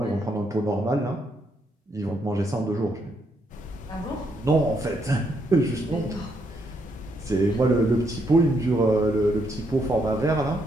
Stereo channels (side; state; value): both; normal; correlation 0.76